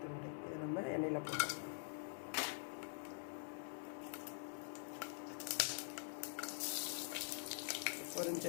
துண்டு. இதை நம்ம எண்ணெயில் போட்டுக்கலாம்.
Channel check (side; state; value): right; silent; digital silence